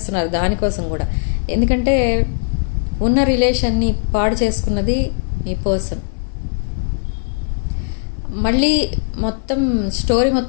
దానికోసం కూడా. ఎందుకంటే ఉన్న రిలేషన్ని పాడు చేసుకున్నది మీ పర్సన్. మళ్ళీ స్టోరీ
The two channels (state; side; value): silent; right; digital silence